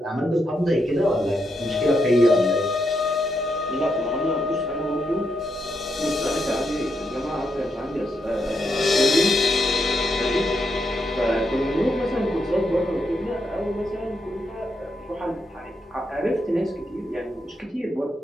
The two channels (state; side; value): normal; both; correlation 0.81